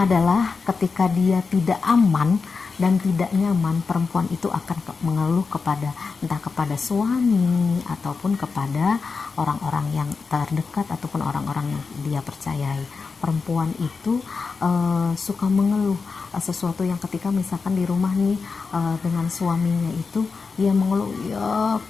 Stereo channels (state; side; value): quieter; right; 4.8 dB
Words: adalah ketika dia tidak aman dan tidak nyaman, perempuan itu akan mengeluh kepada entah kepada suami ataupun kepada orang-orang yang terdekat ataupun orang-orang yang dia percayai. Perempuan itu suka mengeluh sesuatu yang ketika misalkan di rumah nih dengan suaminya itu ia mengeluh, ya